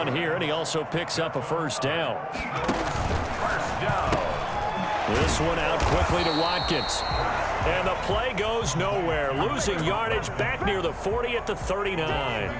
here, and he also picks up a first down. First down. This one out quickly to Watkins. And the play goes nowhere, losing yardage back near the 40 at the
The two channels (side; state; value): both; identical; correlation 1.00